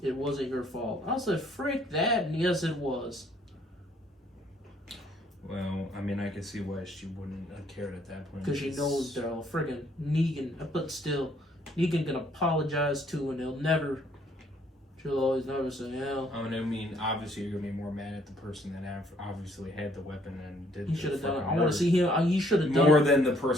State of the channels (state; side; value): normal; both; correlation 0.65